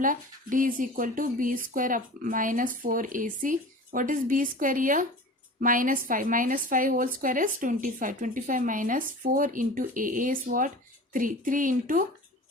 D is equal to b square up minus 4ac. What is b square here? Minus 5. Minus 5 whole square is 25. 25 minus 4 into a is what? 3. 3 into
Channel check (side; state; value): both; normal; correlation 0.37